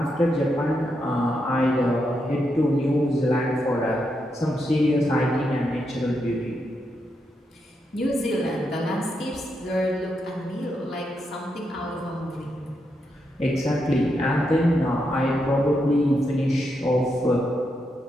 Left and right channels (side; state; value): both; normal; correlation 0.83